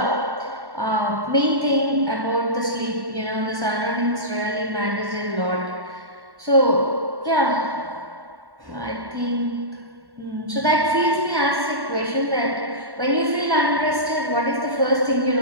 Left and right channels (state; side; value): late; left; 1.1 ms